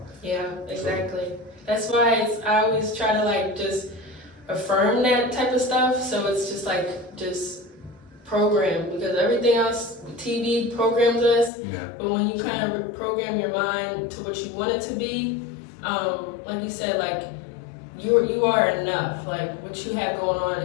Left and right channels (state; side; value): drops out; right; at 11.5 s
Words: Yeah, exactly. That's why I always try to just affirm that type of stuff. So it's just program, because everything else, TV programs us. But when you kind of reprogram your mind to what you want it to be, like you said, you are enough. Like what you have going on